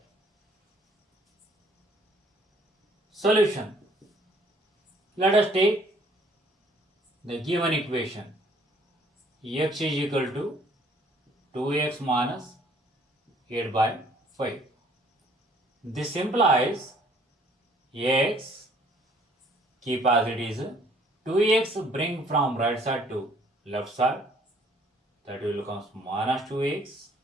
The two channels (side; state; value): both; normal; correlation 0.60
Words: Solution. Let us take the given equation. X is equal to 2x minus 8 by 5. This implies x, keep as it is, 2x bring from right side to left side, that will become minus 2x